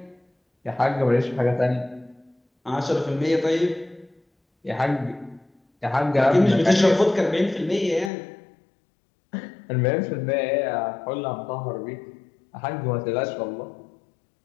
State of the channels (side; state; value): right; drops out; at 8.1 s